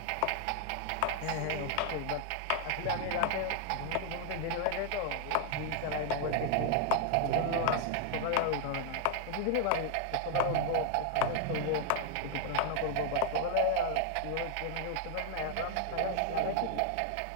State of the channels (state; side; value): different; both; correlation 0.00